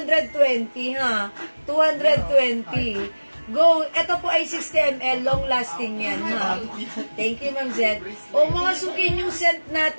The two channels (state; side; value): inverted; both; correlation -1.00